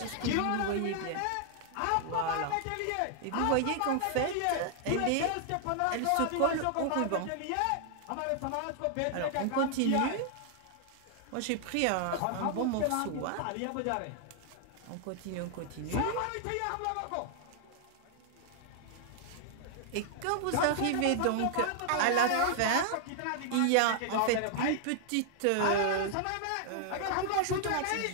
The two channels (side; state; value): both; different; correlation 0.00